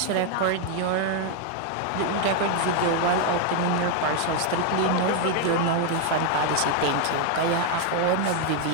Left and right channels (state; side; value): different; both; correlation 0.00